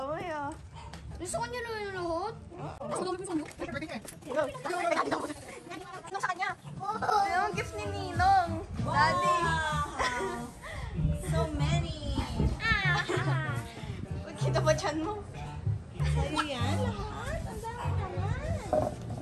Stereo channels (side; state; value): both; identical; correlation 1.00